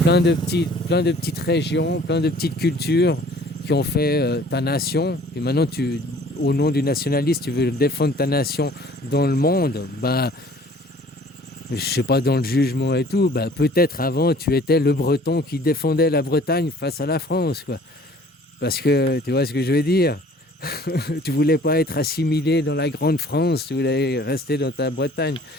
Plein de petites régions, plein de petites cultures qui ont fait ta nation. Et maintenant, au nom du nationalisme, tu veux défendre ta nation dans le monde. Ben, je sais pas, dans le jugement et tout, bah, peut-être avant tu étais le Breton qui défendait la Bretagne face à la France, quoi. Parce que tu vois ce que je veux dire. Tu voulais pas être assimilé dans la grande France, tu voulais rester dans ta Bretagne.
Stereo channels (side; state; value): both; normal; correlation 0.52